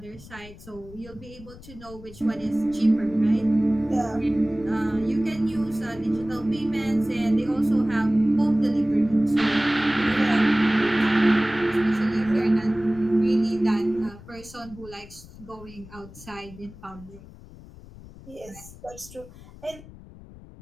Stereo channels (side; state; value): left; noise; rumble, 19 dB below the sound